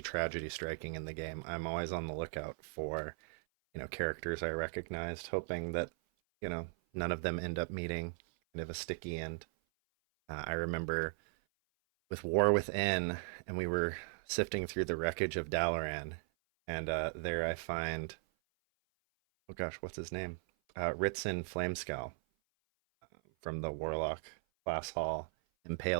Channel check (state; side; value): silent; left; 53 dB below the other